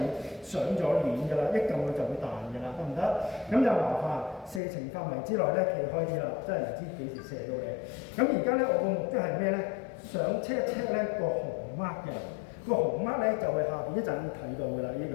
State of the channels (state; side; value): drops out; right; at 4.6 s